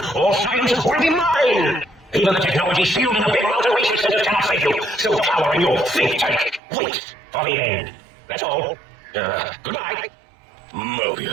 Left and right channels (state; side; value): drops out; left; at 6.6 s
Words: all sciences will be mine. Even the technology sealed in the Big Mountain Research Center cannot save you. Still power in your think tank. Wait for the end. That's all. Goodbye.